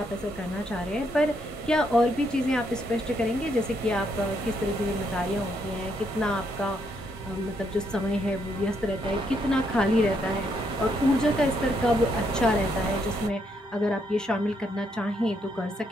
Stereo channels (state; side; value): normal; both; correlation 0.75